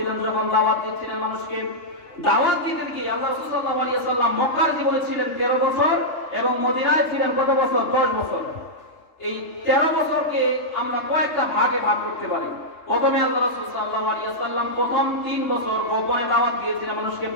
যখন দাওয়াত দিচ্ছিলেন মানুষকে। দাওয়াত দিতে গিয়ে আল্লাহ রাসূল সাল্লাল্লাহু আলাইহি ওয়াসাল্লাম মক্কার জীবনে ছিলেন 13 বছর এবং মদিনায় ছিলেন কত বছর? 10 বছর। এই 13 বছরকে আমরা কয়েকটা ভাগে ভাগ করতে পারি। প্রথমে আল্লাহ রাসূল সাল্লাল্লাহু আলাইহি ওয়াসাল্লাম প্রথম 3 বছর গোপনে দাওয়াত দিয়েছিলেন মানুষকে,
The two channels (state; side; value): late; right; 3.3 ms